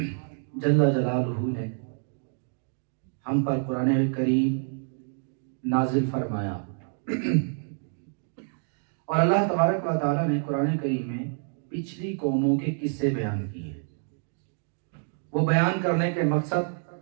جل جلالہ نے ہم پر قرآن کریم نازل فرمایا اور اللہ تبارک و تعالی نے قرآن کریم میں پچھلی قوموں کے قصے بیان کیے۔ وہ بیان کرنے کے مقصد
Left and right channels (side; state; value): left; silent; 59 dB below the other